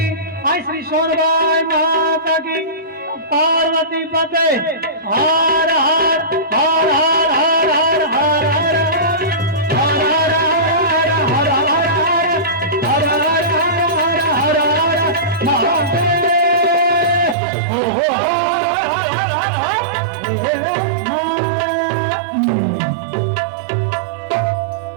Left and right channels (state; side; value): drops out; left; at 17.4 s